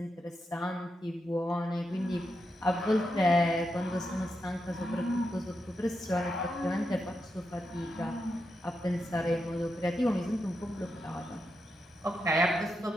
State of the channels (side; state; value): both; normal; correlation 0.86